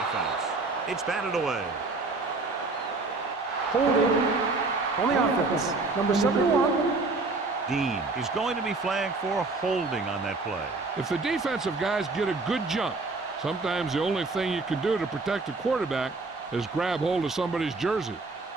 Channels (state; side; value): quieter; left; 3.6 dB